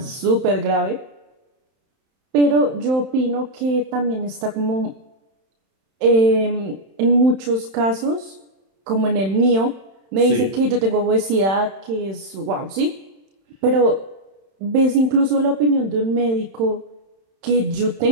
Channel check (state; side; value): late; left; 31 ms